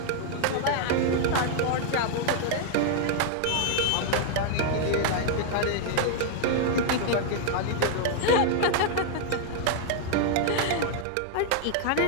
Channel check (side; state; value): both; different; correlation 0.00